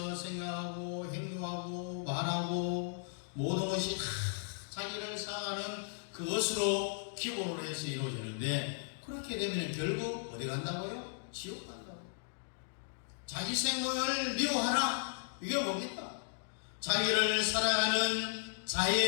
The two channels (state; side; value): silent; right; digital silence